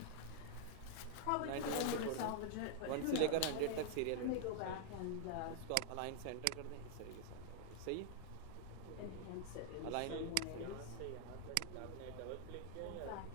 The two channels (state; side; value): different; both; correlation 0.00